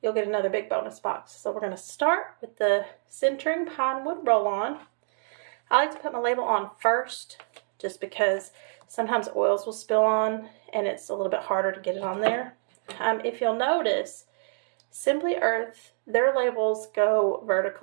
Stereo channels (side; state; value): left; silent; 60 dB below the other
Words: You'll get another big bonus box. So we're going to start with the centering pine wood roll-on. I like to put my label on first just because sometimes oils will spill on and it's a little bit harder to get it on there. If you'll notice, Simply Earth, their labels go